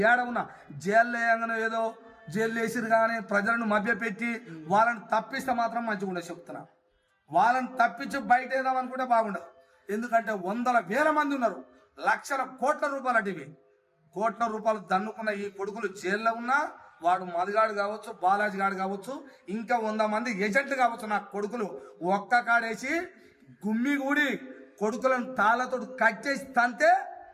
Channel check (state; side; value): identical; both; correlation 1.00